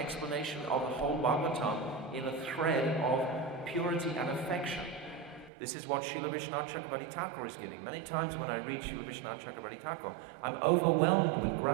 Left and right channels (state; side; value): drops out; left; at 5.5 s